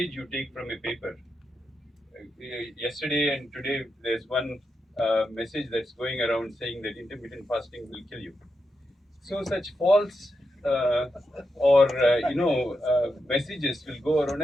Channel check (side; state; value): both; normal; correlation 0.86